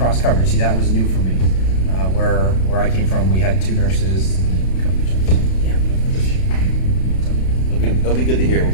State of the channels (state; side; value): late; right; 32 ms